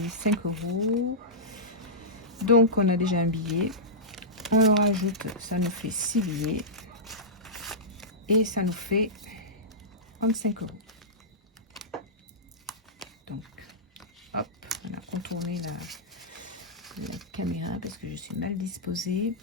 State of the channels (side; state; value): both; normal; correlation -0.15